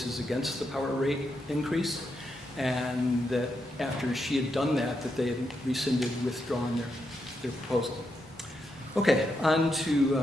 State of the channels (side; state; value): both; normal; correlation 0.83